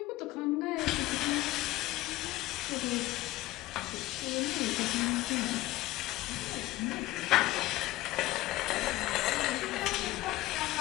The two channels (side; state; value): right; quieter; 17.6 dB